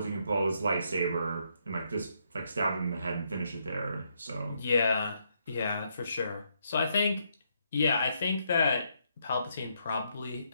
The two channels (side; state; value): both; inverted; correlation -0.76